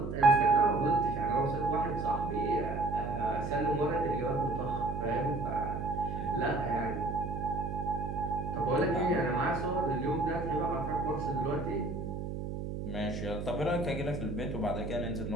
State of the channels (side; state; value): right; noise; hum, 5 dB below the sound